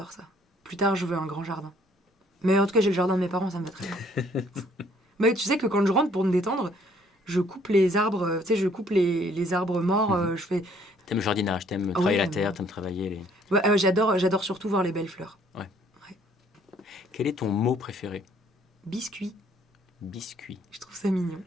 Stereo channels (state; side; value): normal; both; correlation 0.62